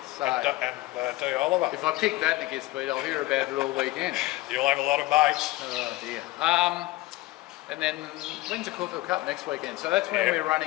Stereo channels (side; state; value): right; quieter; 19.0 dB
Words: So and D. Oliver. If I pick that and it gets beat, I'll hear about it all weekend. You'll have a lot of mates. Oh dear. And then when's the Caulfield Cup? Next weekend. So that's when we're